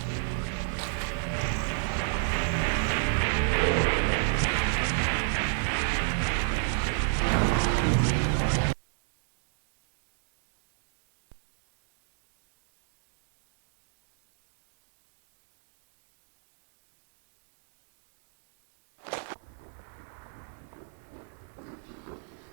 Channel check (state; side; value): silent; left; 57 dB below the other